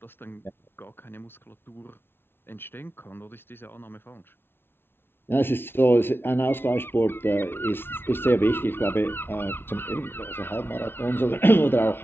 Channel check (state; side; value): late; right; 0.11 ms